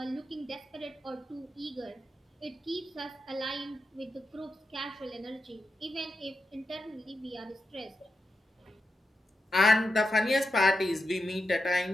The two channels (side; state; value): both; normal; correlation 0.88